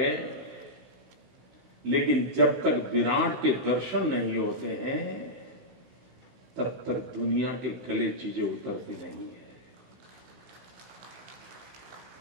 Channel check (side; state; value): left; late; 16 ms